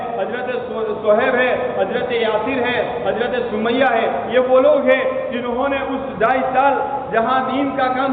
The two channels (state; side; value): identical; both; correlation 1.00